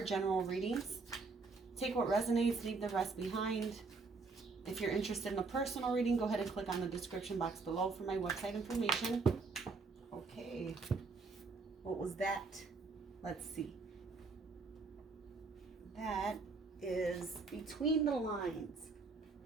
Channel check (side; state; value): left; quieter; 4.2 dB